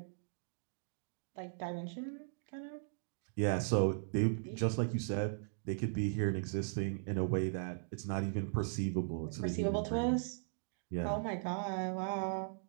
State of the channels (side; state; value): left; silent; digital silence